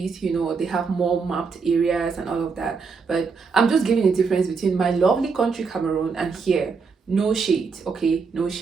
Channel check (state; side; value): quieter; left; 5.1 dB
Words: they have more mapped areas and all of that. But I'm just giving the difference between my lovely country Cameroon and here. No shade, okay? No